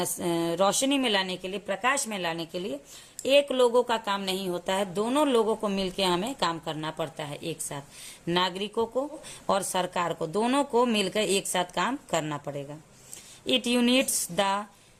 रोशनी में लाने के लिए, प्रकाश में लाने के लिए एक लोगों का काम नहीं होता है, दोनों लोगों को मिलकर हमें काम करना पड़ता है एक साथ। नागरिकों को और सरकार को, दोनों को मिलकर एक साथ काम करना पड़ेगा। It units the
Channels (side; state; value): both; identical; correlation 1.00